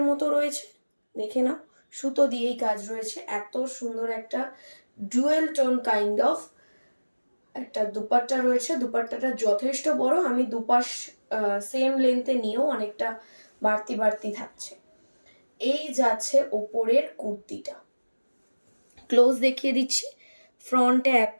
মতো রয়েছে, দেখে নাও। সুতো দিয়েই কাজ রয়েছে, এত সুন্দর একটা ডুয়েল টোন কাইন্ড অফ একটা দুপাট্টা রয়েছে। দুপাট্টাটা যথেষ্ট বড়, আমি দুপাশ সেম লেন্থে নিয়েও অনেকটা বাড়তি বাড়তি থাকছে। এই যাচ্ছে ওপরের কুর্তিটা, ক্লোজ দেখিয়ে দিচ্ছি। ফ্রন্টে এত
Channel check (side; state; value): both; inverted; correlation -1.00